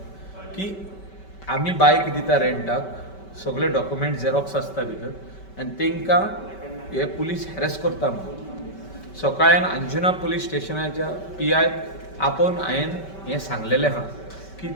की आमी बायक दिता रेंटाक सगळे डॉक्युमेंट झेरॉक्स आसता भितर आनी तांकां हे पुलीस हॅरस करता म्हणून. सकाळीन अंजुना पुलीस स्टेशनाच्या PI आपोवन हांवें हें सांगलेलें आहा की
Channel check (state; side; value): late; right; 5.2 ms